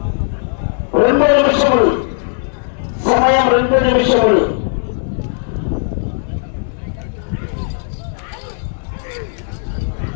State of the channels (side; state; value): right; silent; digital silence